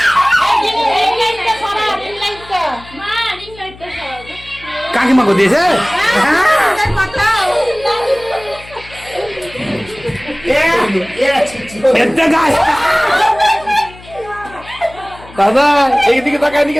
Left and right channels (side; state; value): left; noise; hum, 20 dB below the sound